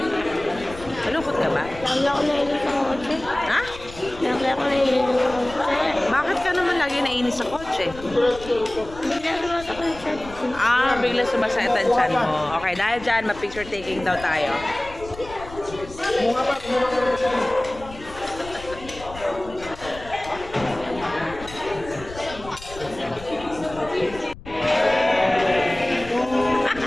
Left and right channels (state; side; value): noise; left; rumble, 16 dB below the sound